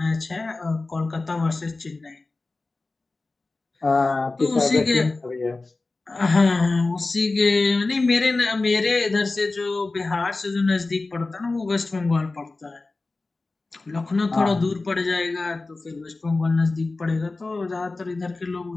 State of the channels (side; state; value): right; quieter; 3.4 dB